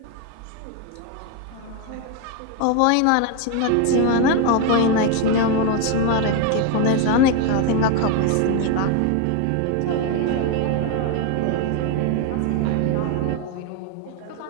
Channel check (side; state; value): both; different; correlation 0.01